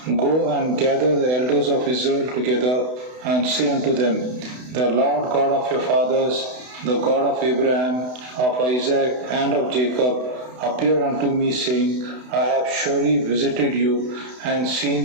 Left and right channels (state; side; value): late; left; 32 ms